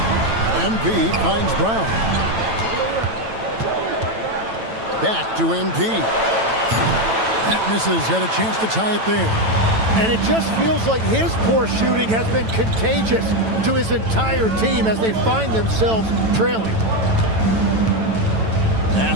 MP finds Brown. Back to MP. That misses. Had a chance to tie it there. And it just feels like his poor shooting has been contagious to his entire team as they find themselves trailing.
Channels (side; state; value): left; late; 9.0 ms